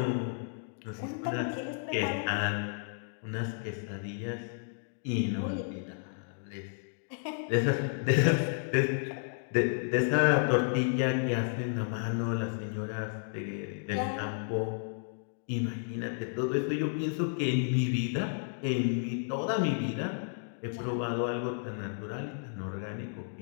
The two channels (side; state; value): right; silent; digital silence